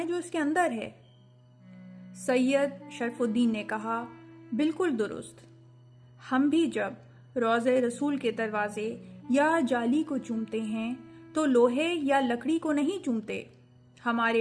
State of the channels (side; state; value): both; identical; correlation 1.00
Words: جو اس کے اندر ہے۔ سید شرف الدین نے کہا، بالکل درست، ہم بھی جب روضہ رسول کے دروازے یا جالی کو چومتے ہیں تو لوہے یا لکڑی کو نہیں چومتے۔